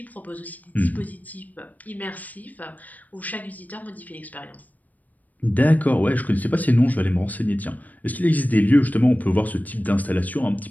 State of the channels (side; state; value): right; late; 0.079 ms